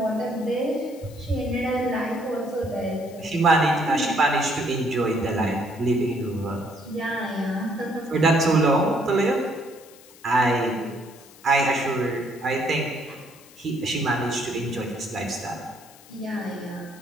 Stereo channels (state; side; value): noise; left; hiss, 23 dB below the sound